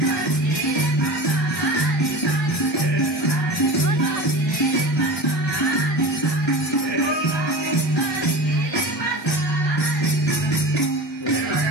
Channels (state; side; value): normal; both; correlation 0.33